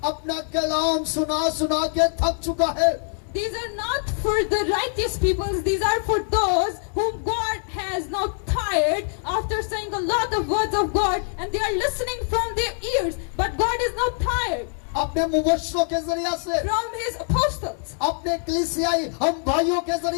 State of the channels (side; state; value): right; silent; 57 dB below the other